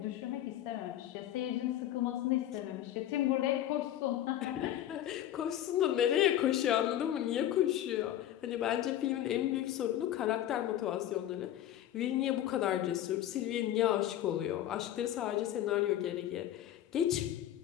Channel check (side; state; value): right; quieter; 12.2 dB